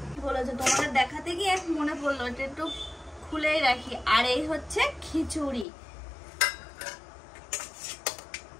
বলেছে তোমাদের দেখাতে গিয়ে মনে পড়লো, এটা একটু খুলেই রাখি। আর এই হচ্ছে খিচুড়ি,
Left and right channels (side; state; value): right; drops out; at 5.7 s